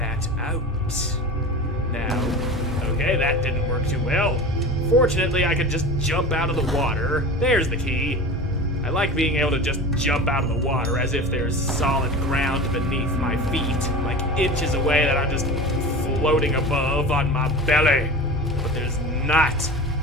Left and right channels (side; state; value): both; normal; correlation 0.33